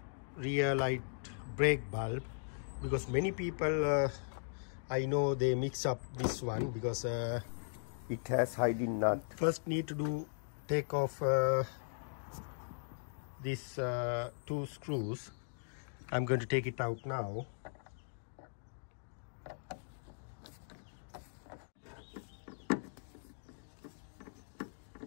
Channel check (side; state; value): right; silent; digital silence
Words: rear light brake bulb, because many people I know they mix up this one because it has hiding nut. First need to take off these two screws. I'm going to take it out now.